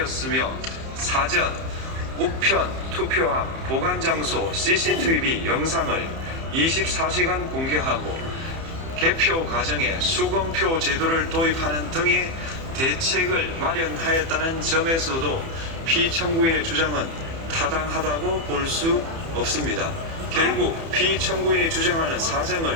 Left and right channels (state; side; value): late; left; 30 ms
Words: 사전, 우편, 투표함, 보관 장소 CCTV 영상을 24시간 공개하고 개표 과정에 수검표 제도를 도입하는 등의 대책을 마련하였다는 점에서도 피청구인의 주장은 타당하다고 볼 수 없습니다. 결국 피청구인이 주장하는 사정을